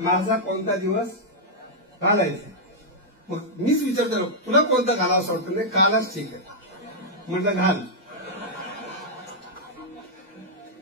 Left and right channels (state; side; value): normal; both; correlation -0.07